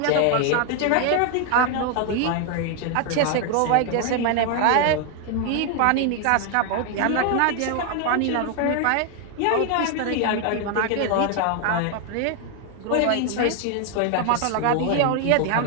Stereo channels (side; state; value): both; different; correlation 0.00